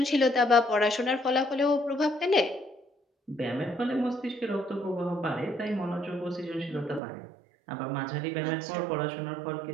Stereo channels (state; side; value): drops out; left; at 7.0 s